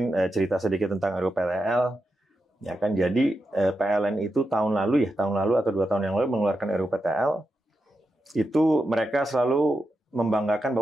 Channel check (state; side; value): normal; both; correlation 0.87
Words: cerita sedikit tentang RUPTL. Ya kan, jadi PLN itu tahun lalu atau 2 tahun yang lalu mengeluarkan RUPTL. Itu mereka selalu membanggakan